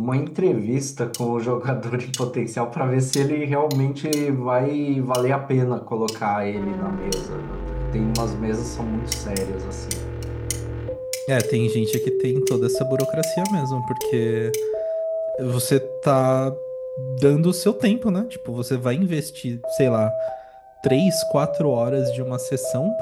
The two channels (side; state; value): both; identical; correlation 1.00